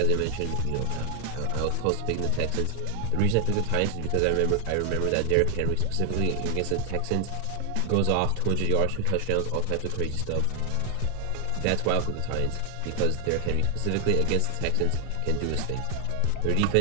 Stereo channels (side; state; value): both; different; correlation 0.00